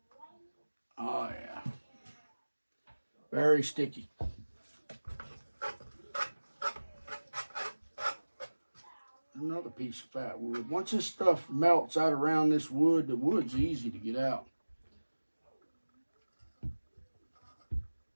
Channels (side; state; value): both; inverted; correlation -1.00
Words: Oh, yeah. Very sticky. Another piece of fat wood. Once this stuff melts out around this wood, the wood's easy to get out.